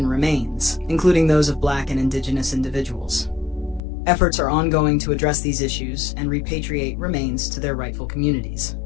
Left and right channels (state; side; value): drops out; right; at 3.8 s